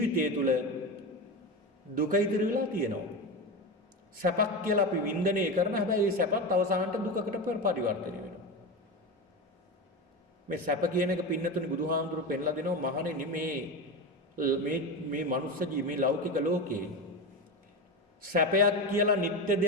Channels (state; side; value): normal; both; correlation 0.21